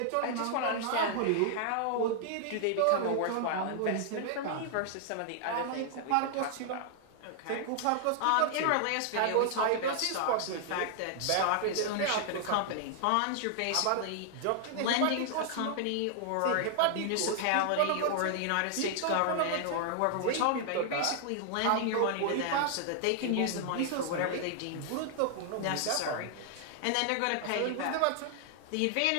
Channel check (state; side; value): different; both; correlation 0.00